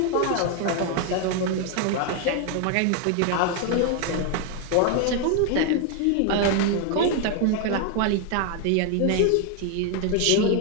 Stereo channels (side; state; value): both; different; correlation 0.01